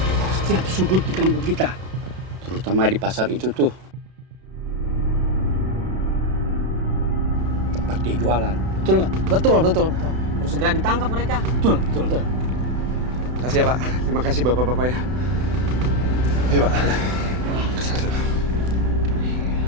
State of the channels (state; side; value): late; left; 32 ms